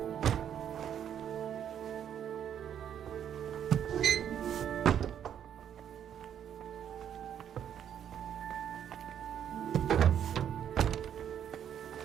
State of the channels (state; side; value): quieter; left; 9.3 dB